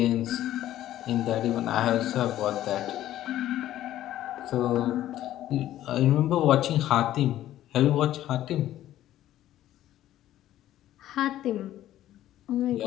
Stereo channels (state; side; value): quieter; right; 13.2 dB